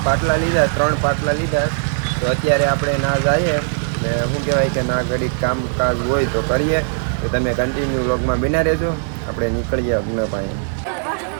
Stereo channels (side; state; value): left; silent; digital silence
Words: પાટલા લીધા, 3 પાટલા લીધા. તો અત્યારે આપણે ના જઈએ ને શું કહેવાય કે ના ઘડીક કામકાજ હોય તો કરીએ. તો તમે કન્ટિન્યુ વ્લોગમાં બના રહેજો. આપણે નીકળીએ યજ્ઞ પાસે.